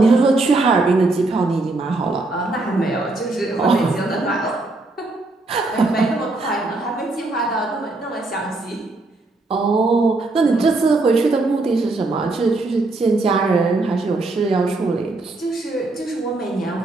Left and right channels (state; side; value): quieter; left; 3.1 dB